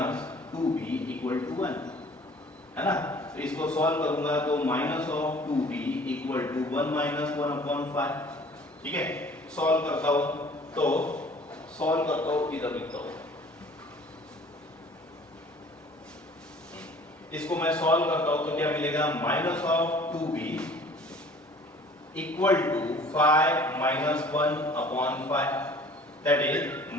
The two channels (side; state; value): both; normal; correlation 0.51